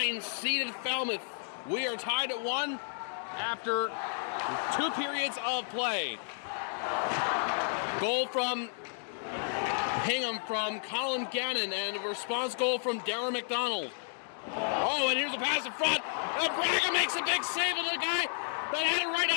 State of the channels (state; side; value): silent; right; digital silence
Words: seeded Falmouth. We are tied at 1 after 2 periods of play. Goal from Hingham from Colin Gannon, and a response goal from Darren McDonald. Oh, and here's a pass in front. Braga makes a big save, and the guy that had it right